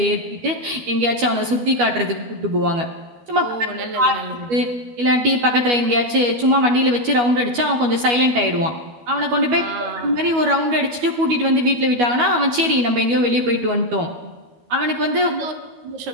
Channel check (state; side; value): late; left; 12 ms